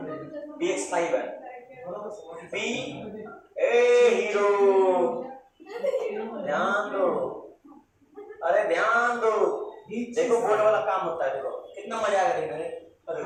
PX5 है, P ए हीरो ध्यान दो, अरे ध्यान दो, देखो बोर्ड वाला काम होता है, देखो कितना मजा आएगा देखने में, अरे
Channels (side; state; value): both; identical; correlation 1.00